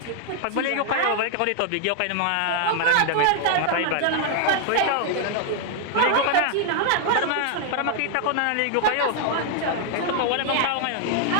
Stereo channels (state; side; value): different; both; correlation 0.00